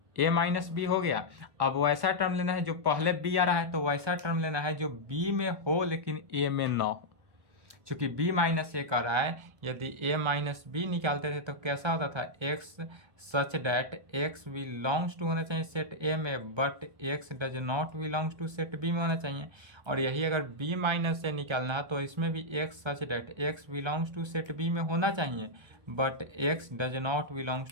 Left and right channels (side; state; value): left; late; 1.3 ms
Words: a माइनस बी हो गया। अब वैसा टर्म लेना है जो पहले b आ रहा है, तो वैसा टर्म लेना है जो b में हो लेकिन a में ना हो। चूंकि b माइनस ए कर रहा है, यदि a माइनस बी निकालते थे तो कैसा होता था, x such that x belongs to होना चाहिए सेट a में, but x does not belongs to set b में होना चाहिए। और यही अगर b माइनस ए निकालना है तो इसमें भी x such that x belongs to set b में होना चाहिए, but x does not